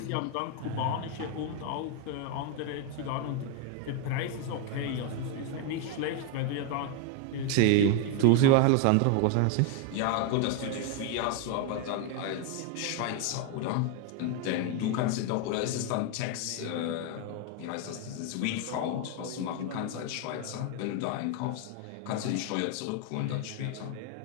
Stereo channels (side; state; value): both; different; correlation 0.01